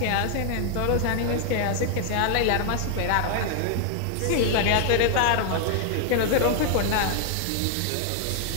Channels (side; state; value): both; different; correlation 0.00